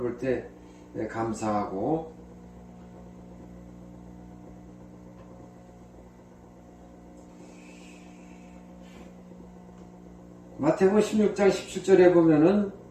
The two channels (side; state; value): both; identical; correlation 1.00